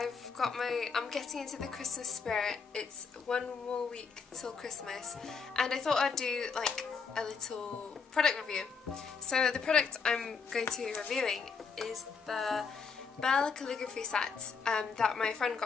getting into the Christmas spirit. It's one more week till Christmas and I thought I'd do like a little product review. So the product I'm going to be reviewing is the Belle Calligraphy set that my friend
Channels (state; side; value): quieter; right; 5.4 dB